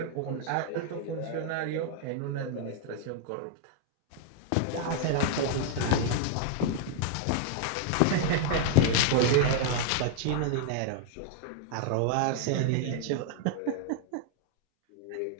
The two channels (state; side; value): different; both; correlation 0.00